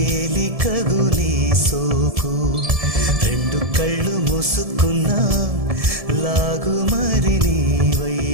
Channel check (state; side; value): late; left; 1.7 ms